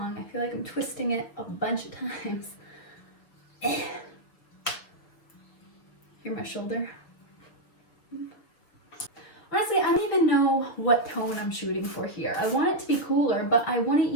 I feel like I'm twisting it a bunch of times. Hear my shoulder? Honestly, I don't even know what tone I'm shooting for here. I want it to be cooler, but I wouldn't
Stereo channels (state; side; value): late; right; 6.3 ms